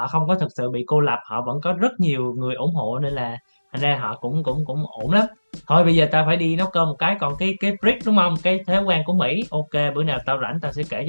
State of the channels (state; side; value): inverted; both; correlation -1.00